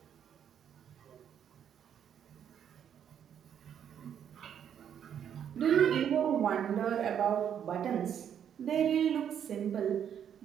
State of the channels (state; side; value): quieter; left; 8.9 dB